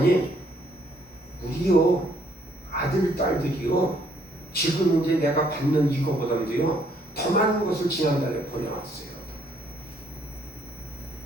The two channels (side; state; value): both; normal; correlation 0.67